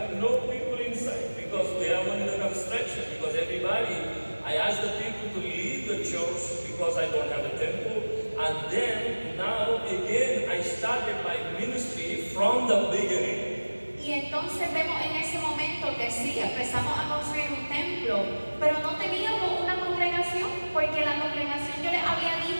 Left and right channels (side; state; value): both; inverted; correlation -1.00